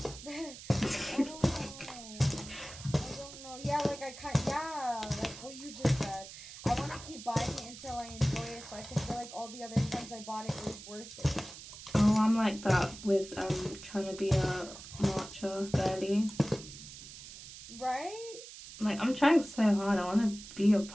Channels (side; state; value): right; noise; hiss, 14 dB below the sound